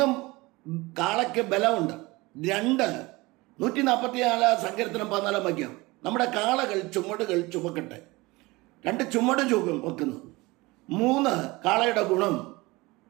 കാളയ്ക്ക് ബലമുണ്ട്. 144 സങ്കീർത്തനം 14 വാക്യം. നമ്മുടെ കാളകൾ ചുമടുകൾ ചുമക്കട്ടെ. 2 ചുമട് വെക്കുന്നു. 3 കാളയുടെ ഗുണം.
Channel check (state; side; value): quieter; left; 22.3 dB